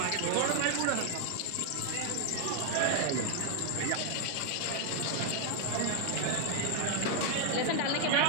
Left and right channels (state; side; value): different; both; correlation 0.01